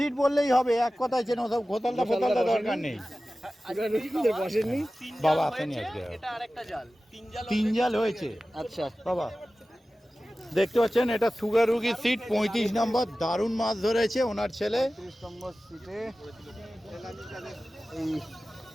বললেই হবে, এক কথায় চেন, সব ঘোতালটা ফোতালটা দরকার নেই। বসেননি বাবা আসেনি আজকে, এটা আরেকটা জাল, 3 জাল হয়েছে। আচ্ছা বাবা দেখতে পাচ্ছেন, এটা সুগার রুগীর সিট, 35 নম্বর, দারুণ মাছ ধরেছে ওনার ছেলে। 30 নম্বর সিটে এই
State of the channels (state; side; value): normal; both; correlation 0.96